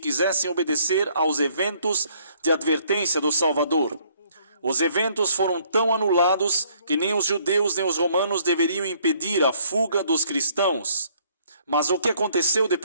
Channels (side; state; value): both; inverted; correlation -0.64